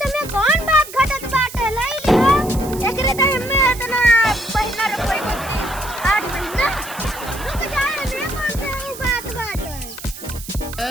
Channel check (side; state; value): right; noise; hiss, 13 dB below the sound